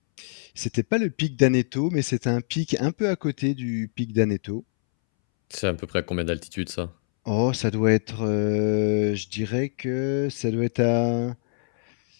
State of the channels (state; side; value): silent; right; 62 dB below the other